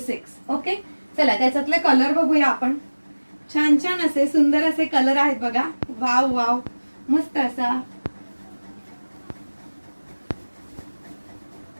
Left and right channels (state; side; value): inverted; both; correlation -1.00